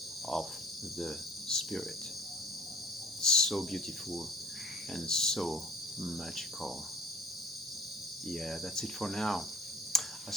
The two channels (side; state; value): both; normal; correlation 0.49